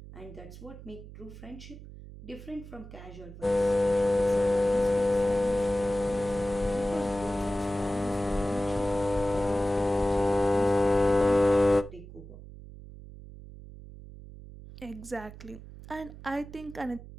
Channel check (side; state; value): right; noise; hum, 16 dB below the sound